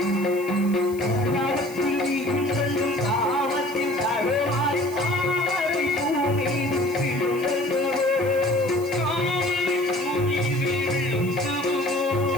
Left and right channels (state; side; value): noise; left; hiss, 20 dB below the sound